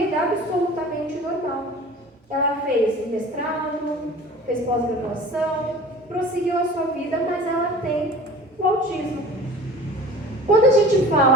absolutamente normal. Ela fez mestrado, fez pós-graduação, prosseguiu a sua vida, mas ela tem o autismo. Quando a gente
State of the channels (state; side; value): normal; both; correlation 0.41